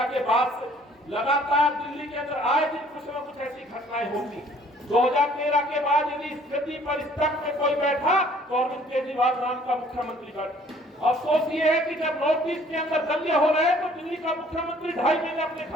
के बाद से लगातार दिल्ली के अंदर आए दिन कुछ न कुछ ऐसी घटनाएं होती। 2013 के बाद यदि इस गद्दी पर इस तख्त में कोई बैठा तो अरविंद केजरीवाल नाम का मुख्यमंत्री बैठा। अफसोस ये है कि जब नॉर्थ ईस्ट के अंदर दंगे हो रहे तो दिल्ली का मुख्यमंत्री 2.5 महीने अपने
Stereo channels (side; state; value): both; normal; correlation 0.57